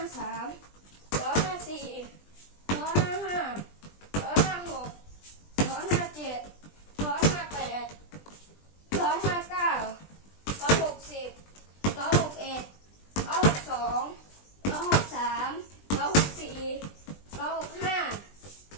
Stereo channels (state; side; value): late; right; 20 ms